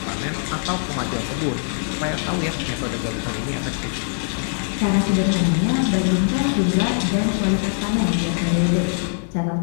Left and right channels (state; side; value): silent; right; digital silence